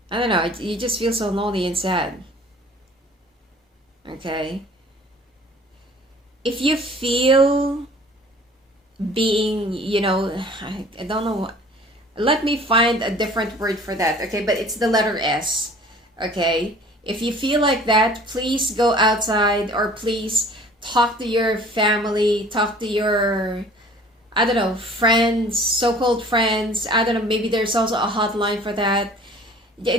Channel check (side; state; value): both; normal; correlation 0.49